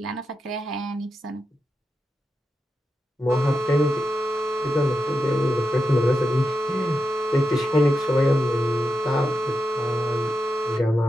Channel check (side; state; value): both; normal; correlation 0.88